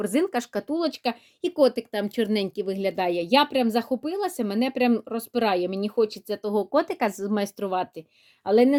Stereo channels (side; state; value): both; identical; correlation 1.00